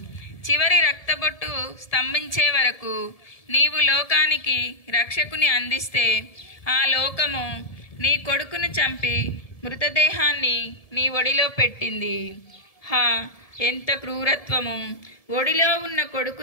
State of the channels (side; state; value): right; late; 1.7 ms